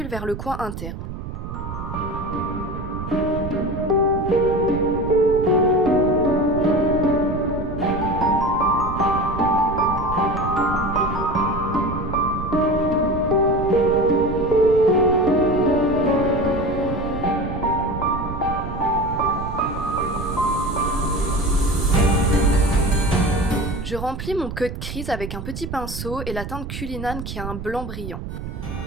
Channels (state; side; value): noise; right; rumble, 8 dB below the sound